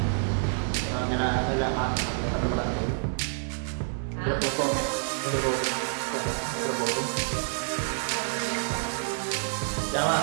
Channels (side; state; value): left; silent; digital silence